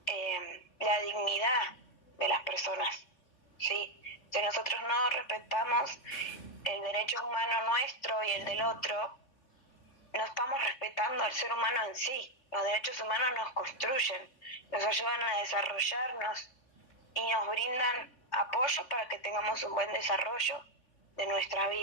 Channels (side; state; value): right; late; 3.4 ms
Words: la dignidad de las personas, ¿sí? Si nosotros no respetamos el derecho humano nuestro y el del otro, no estamos respetando al ser humano en sí. Los derechos humanos nos construyen, nos ayudan a desarrollarnos y nos brindan apoyo para que tengamos un buen desarrollo de nuestra